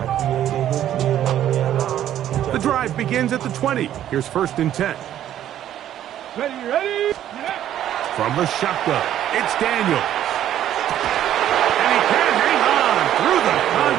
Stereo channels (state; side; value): quieter; left; 11.5 dB